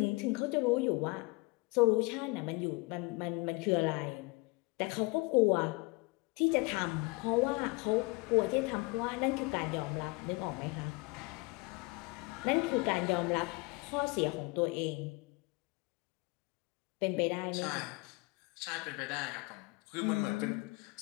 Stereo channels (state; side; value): quieter; right; 27.0 dB